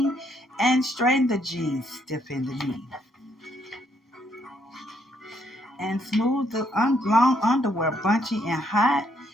and straightened the jeans, stiff in the knee, and smoothed the long underwear, bunchy and hot,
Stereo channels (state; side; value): normal; both; correlation 0.72